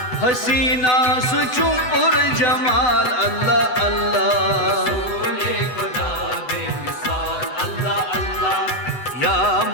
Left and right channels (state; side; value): late; right; 8.0 ms